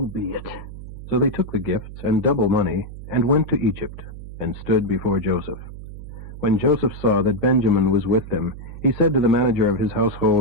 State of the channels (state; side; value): noise; right; hum, 12 dB below the sound